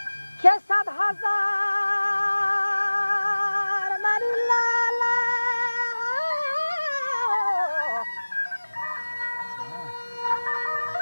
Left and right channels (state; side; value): inverted; both; correlation -1.00